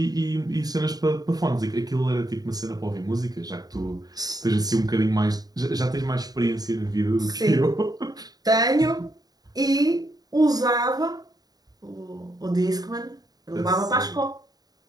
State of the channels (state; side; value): late; left; 0.19 ms